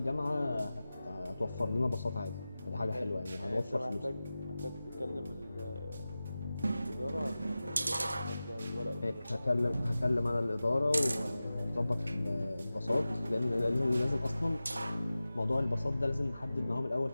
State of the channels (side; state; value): both; inverted; correlation -0.96